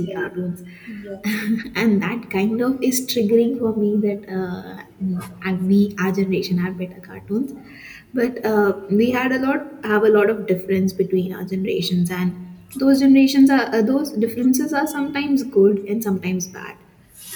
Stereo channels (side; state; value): both; identical; correlation 1.00